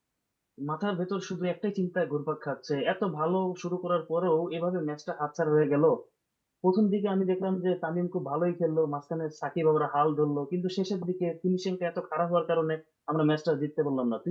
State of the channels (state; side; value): identical; both; correlation 1.00